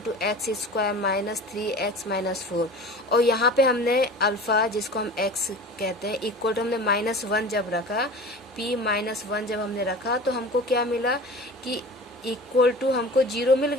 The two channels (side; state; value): both; normal; correlation 0.37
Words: X square -3x -4, और यहाँ पे हमने अल्फा जिसको हम x कहते हैं इक्वल टू हमने -1 जब रखा, p -1 जब हमने रखा तो हमको क्या मिला कि इक्वल टू हमको 0 मिल